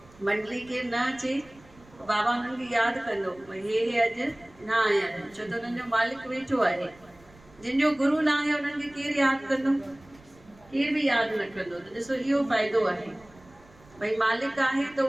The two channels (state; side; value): noise; right; rumble, 26 dB below the sound